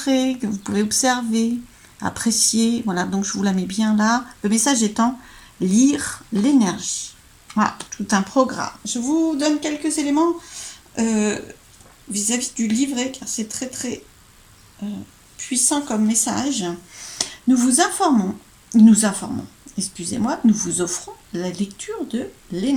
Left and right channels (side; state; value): both; identical; correlation 1.00